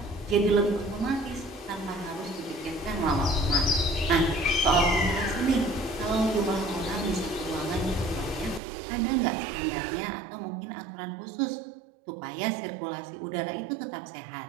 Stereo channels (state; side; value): drops out; left; at 8.6 s